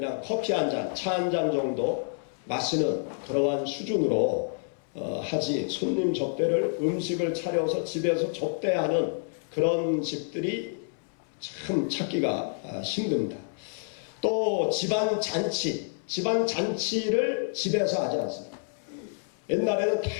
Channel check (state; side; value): silent; right; 59 dB below the other